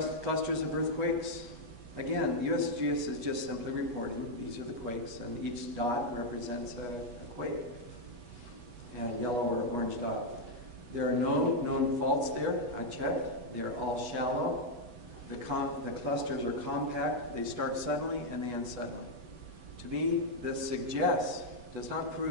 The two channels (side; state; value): left; late; 8.5 ms